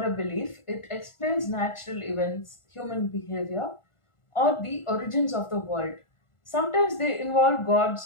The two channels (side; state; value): right; late; 1.4 ms